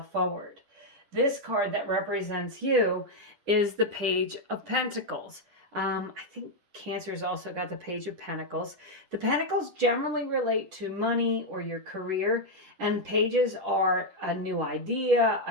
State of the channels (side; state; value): left; late; 10 ms